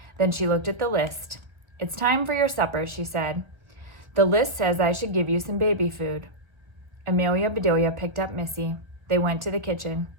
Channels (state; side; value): late; left; 1.5 ms